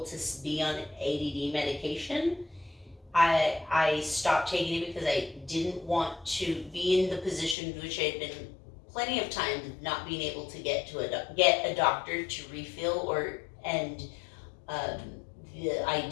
to be on ADD medication, I stopped taking it because I didn't want to be in the position which I had been plenty of times not being able to get a doctor to refill, the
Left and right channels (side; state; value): right; drops out; at 7.6 s